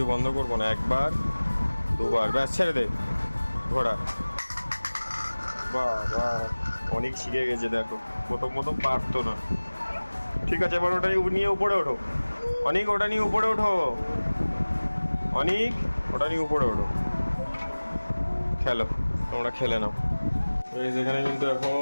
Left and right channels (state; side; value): inverted; both; correlation -1.00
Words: বন্ধ করবো না, একবার দুবার ব্যাস ছেড়ে দে ঘোড়া। বাহ বাহ। অনেক শিখে গেছে দেখো, প্রথম প্রথম পারতো না। ঠিক আছে, এবার ওটা নিয়ে উপরে ওঠো। অনেক ওটা নিয়ে উপরে ওঠো। অনেক ওটা নিয়ে উপরে ওঠো, খেলো, তোমরা খেলে নাও। যেখানে কিন্তু